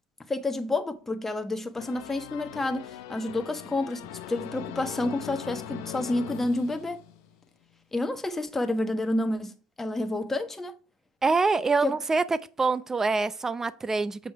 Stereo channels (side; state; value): both; normal; correlation 0.85